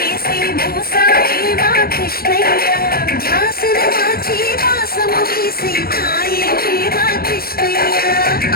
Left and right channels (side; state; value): right; late; 0.44 ms